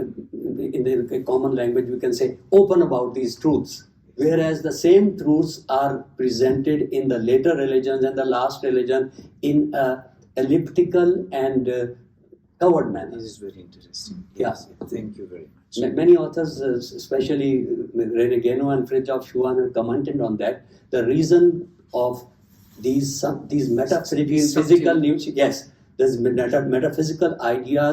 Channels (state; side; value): identical; both; correlation 1.00